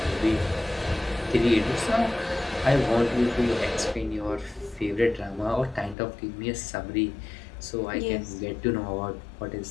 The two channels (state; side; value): drops out; right; at 6.0 s